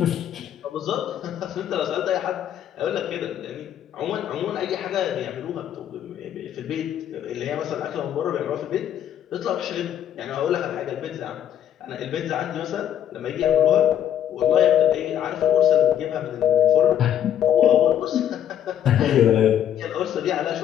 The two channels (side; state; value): right; quieter; 10.3 dB